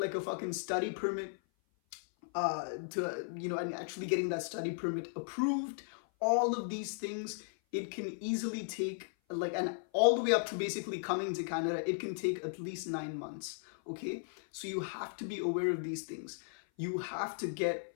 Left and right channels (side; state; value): right; silent; 54 dB below the other